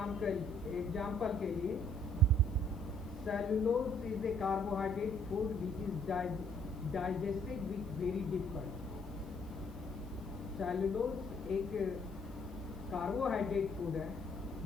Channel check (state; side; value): noise; left; hiss, 30 dB below the sound